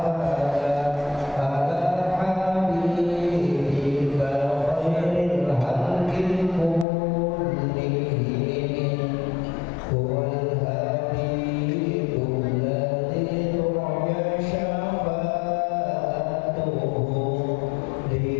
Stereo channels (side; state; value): right; drops out; at 6.9 s